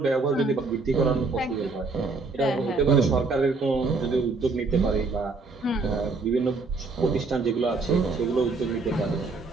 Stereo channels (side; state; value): left; quieter; 3.9 dB